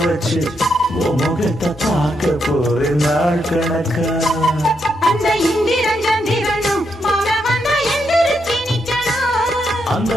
வச்சு உன் முகத்தை பார்க்க போற நாள் கணக்கா அந்த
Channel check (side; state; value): both; normal; correlation 0.80